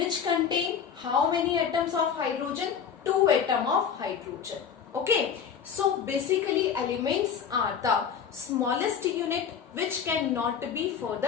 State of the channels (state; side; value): quieter; right; 7.3 dB